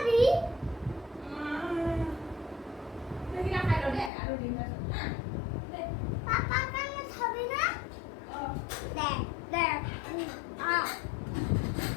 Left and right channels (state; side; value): drops out; right; at 4.1 s